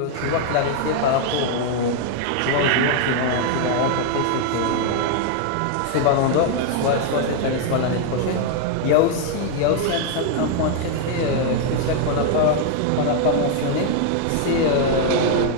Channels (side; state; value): both; different; correlation 0.00